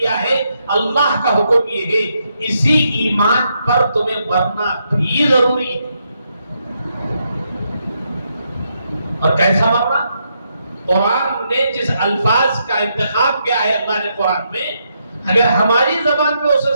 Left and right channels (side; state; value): both; inverted; correlation -0.79